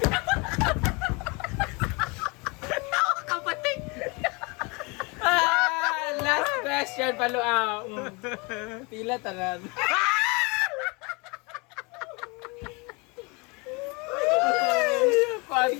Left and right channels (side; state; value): right; quieter; 28.6 dB